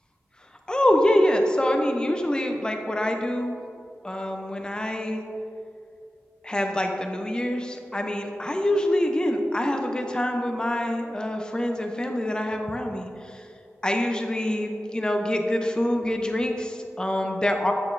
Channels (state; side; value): normal; both; correlation 0.94